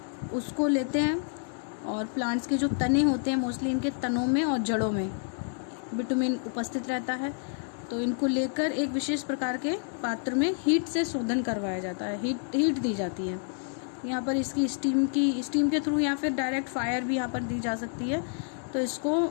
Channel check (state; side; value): silent; right; 56 dB below the other